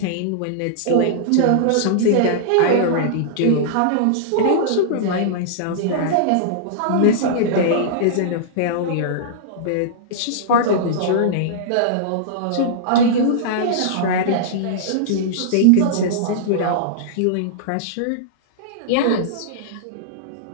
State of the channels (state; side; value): different; both; correlation -0.02